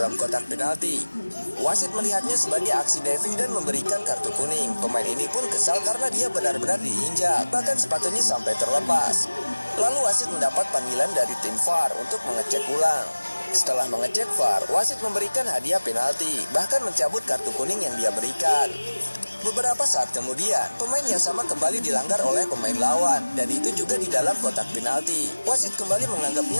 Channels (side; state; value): both; inverted; correlation -1.00